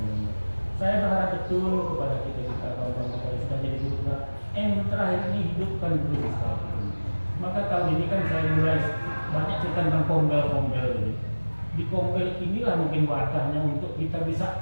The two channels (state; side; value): inverted; both; correlation -1.00